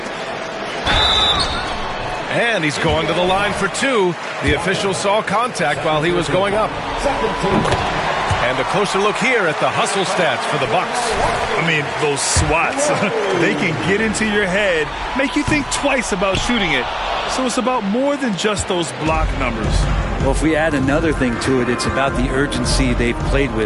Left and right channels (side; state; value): both; identical; correlation 1.00